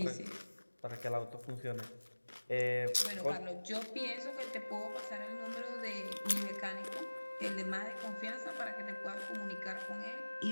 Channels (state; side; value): inverted; both; correlation -1.00